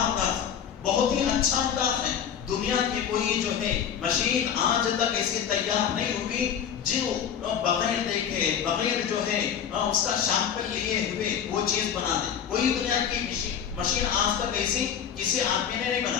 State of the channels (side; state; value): right; quieter; 8.5 dB